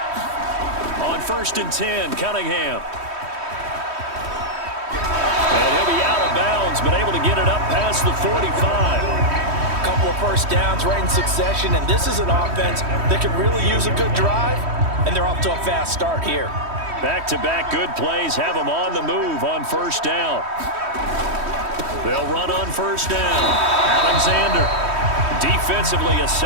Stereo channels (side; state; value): left; late; 3.1 ms